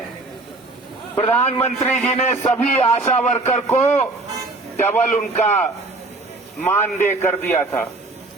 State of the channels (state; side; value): quieter; left; 3.1 dB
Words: प्रधानमंत्री जी ने सभी आशा वर्कर को डबल उनका मानदेय कर दिया था।